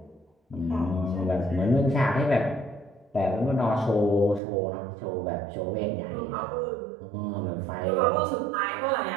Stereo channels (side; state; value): left; drops out; at 4.4 s